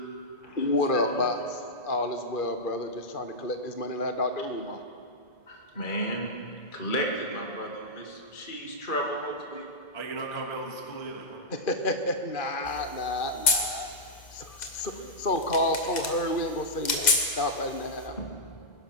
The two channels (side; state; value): right; late; 2.0 ms